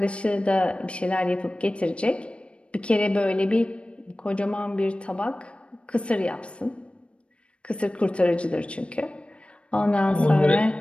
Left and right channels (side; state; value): right; late; 0.059 ms